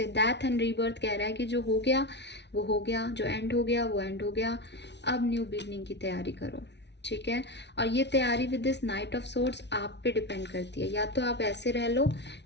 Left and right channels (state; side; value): late; right; 0.50 ms